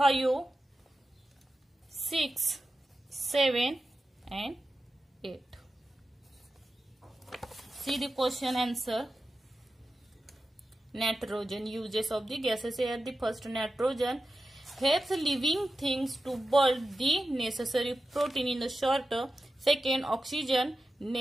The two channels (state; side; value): normal; both; correlation 0.92